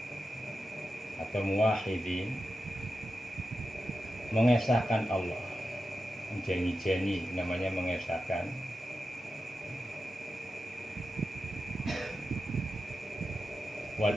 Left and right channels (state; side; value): normal; both; correlation 0.91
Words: atau muwahhidin, mengesahkan Allah, jeni-jeni namanya mengesahkan.